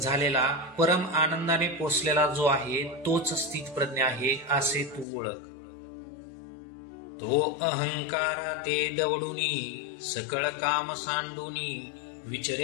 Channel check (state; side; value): drops out; right; at 5.1 s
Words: झालेला, परम आनंदाने पोचलेला जो आहे, तोच स्थित प्रज्ञ आहे असे तू ओळख. तो अहंकारा ते दवडूनी, सकळ काम सांडूनी,